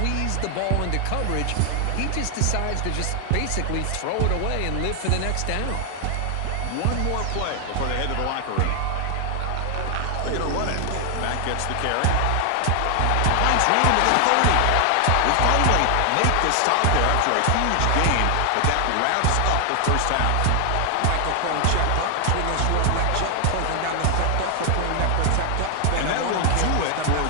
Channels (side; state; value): both; different; correlation 0.00